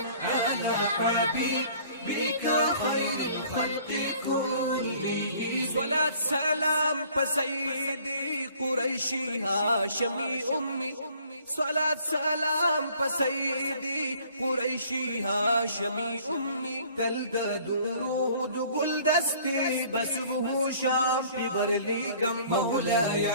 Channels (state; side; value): inverted; both; correlation -0.55